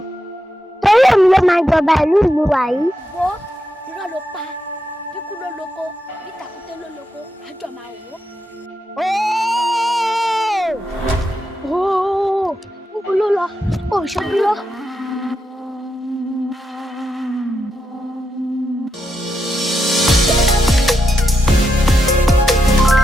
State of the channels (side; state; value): both; normal; correlation 0.84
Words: Torí èmi ló máa jọba ìlú mi wà yìí. Wo irọ́ ló pa, bíkú ló lóko, bí tàkúté ló lóko, àjọ máa wò ó. Níbo ló lọ? Ó ṣojú lọ.